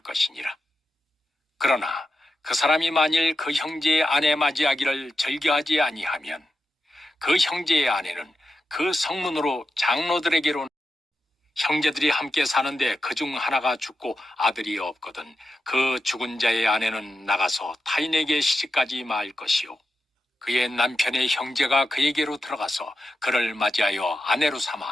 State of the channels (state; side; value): normal; both; correlation 0.89